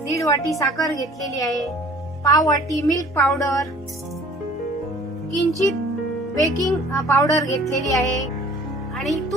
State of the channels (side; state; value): both; normal; correlation 0.51